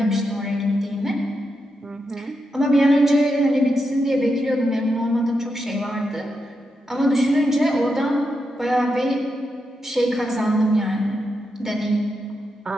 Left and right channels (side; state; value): both; normal; correlation 0.85